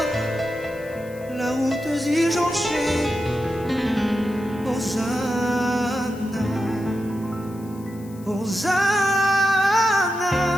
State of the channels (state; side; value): noise; left; hiss, 24 dB below the sound